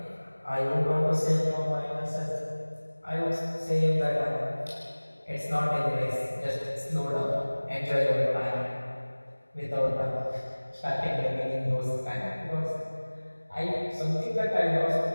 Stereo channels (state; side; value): inverted; both; correlation -1.00